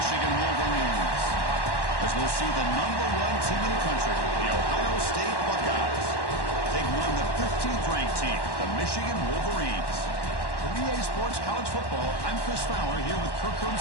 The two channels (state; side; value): late; right; 1.1 ms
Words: Wolverines. As we'll see the #1 team in the country, the Ohio State Buckeyes, taking on the 15th ranked team, the Michigan Wolverines. For EA Sports College Football, I'm Chris Fowler here with Kirk